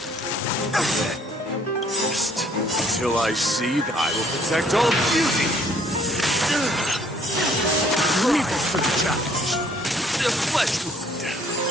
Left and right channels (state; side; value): normal; both; correlation 0.62